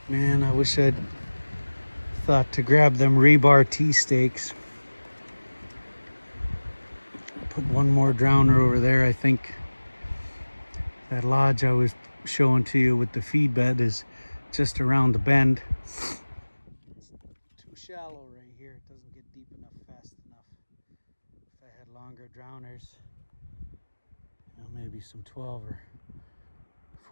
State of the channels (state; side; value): inverted; both; correlation -1.00